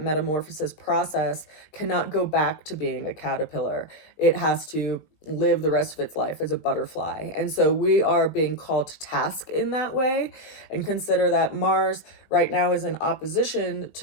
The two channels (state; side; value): late; right; 20 ms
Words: process, cannot go back to being a caterpillar. It has to live the rest of its life as a butterfly. And so we are being called to task in that way. And consider that Mars right now is in opposition